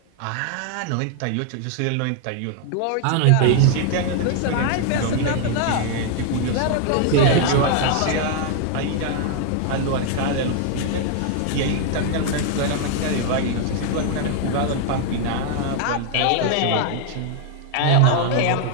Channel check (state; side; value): different; both; correlation 0.00